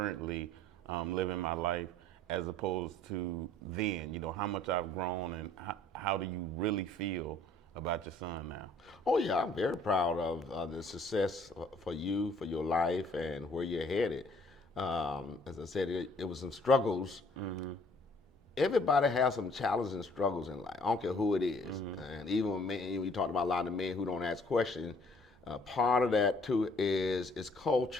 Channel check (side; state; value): both; normal; correlation 0.58